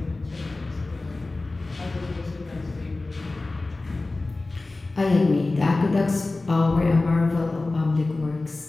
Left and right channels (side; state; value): right; quieter; 3.2 dB